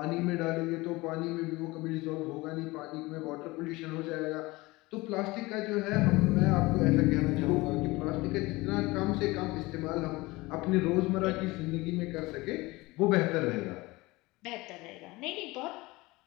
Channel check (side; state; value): right; quieter; 21.6 dB